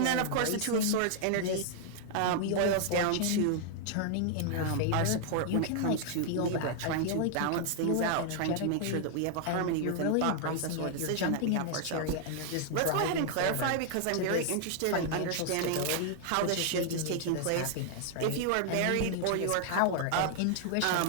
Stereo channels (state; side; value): different; both; correlation 0.00